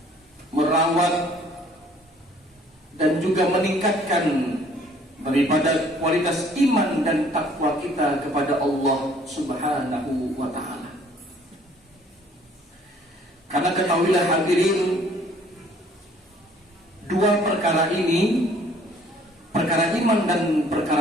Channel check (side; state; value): both; normal; correlation 0.58